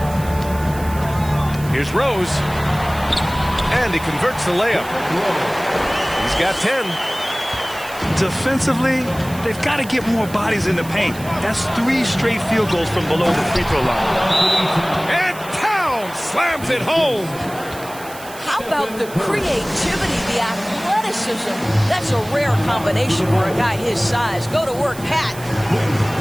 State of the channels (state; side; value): noise; right; hiss, 17 dB below the sound